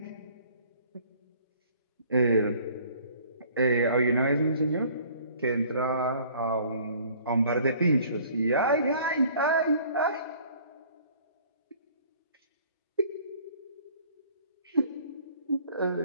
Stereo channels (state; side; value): inverted; both; correlation -0.54